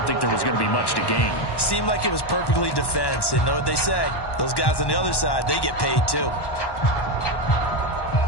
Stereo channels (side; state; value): right; late; 1.1 ms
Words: think there was going to be much to gain. Seemed like it was perfectly defense. And know what they say? Those guys on the other side, they get paid too.